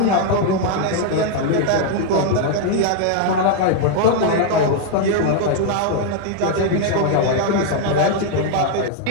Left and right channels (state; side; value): different; both; correlation 0.00